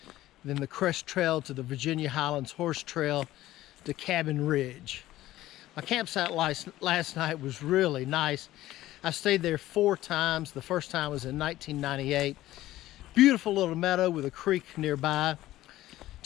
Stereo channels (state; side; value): quieter; right; 15.3 dB